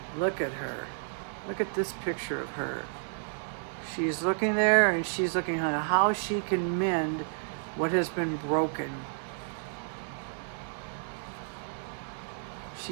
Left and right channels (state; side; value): silent; left; digital silence